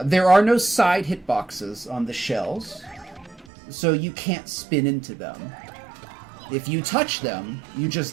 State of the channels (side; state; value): left; drops out; at 3.5 s